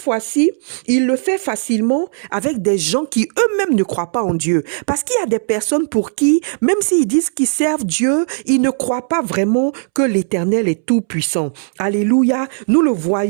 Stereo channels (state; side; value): silent; left; 68 dB below the other